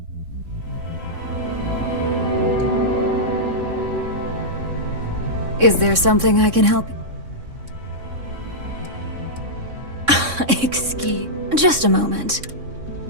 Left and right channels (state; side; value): late; left; 3.6 ms